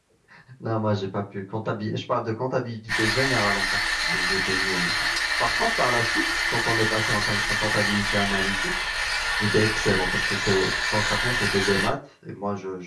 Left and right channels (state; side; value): identical; both; correlation 1.00